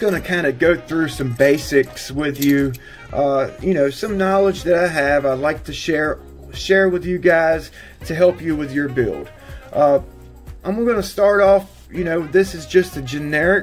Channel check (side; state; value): both; identical; correlation 1.00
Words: to kind of go through some basics with you. You know, some knowledge that I have, I'd like to share with you guys to help you with your build. I'm going to start off, you know, this is just a